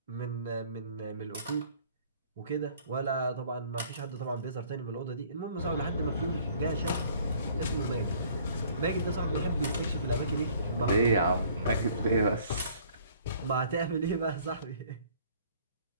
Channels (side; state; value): both; inverted; correlation -0.56